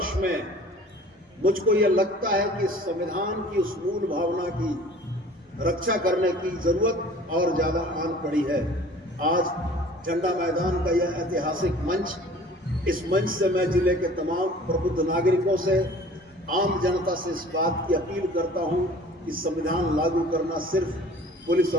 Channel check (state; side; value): normal; both; correlation 0.47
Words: में मुझको यह लगता है कि संविधान की उस मूल भावना की रक्षा करने की जरूरत और ज्यादा आन पड़ी है। आज झंडा मैदान का यह ऐतिहासिक मंच, इस मंच से मैं जिले के तमाम प्रबुद्ध नागरिकों से, आम जनता से इस बात की अपील करता हूं कि संविधान लागू करना सिर्फ पुलिस